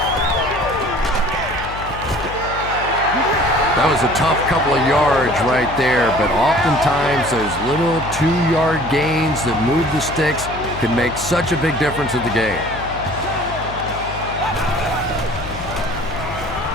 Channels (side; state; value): left; noise; hum, 11 dB below the sound